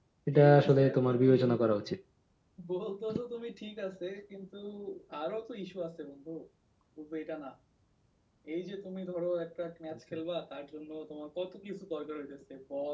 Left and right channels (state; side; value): identical; both; correlation 1.00